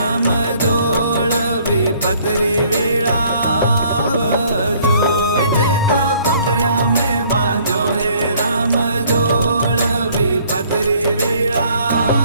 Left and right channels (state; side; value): inverted; both; correlation -0.60